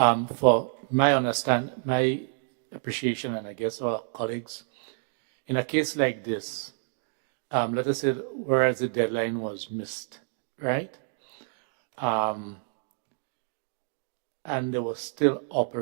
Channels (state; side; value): silent; left; digital silence